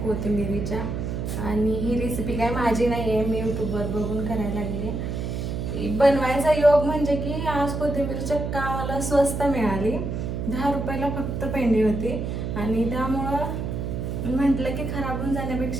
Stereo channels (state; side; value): noise; right; hum, 3 dB below the sound